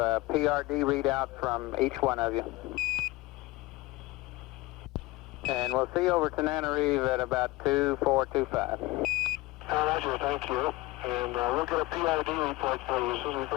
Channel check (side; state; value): right; quieter; 20.1 dB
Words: PRD readout from each one of you. And we'll see you over to NANOREV at about 2425. Roger, thank you. And we'll get a PID report for you as soon as we